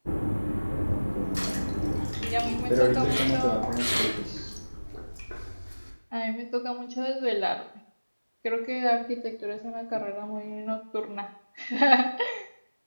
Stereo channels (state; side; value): inverted; both; correlation -1.00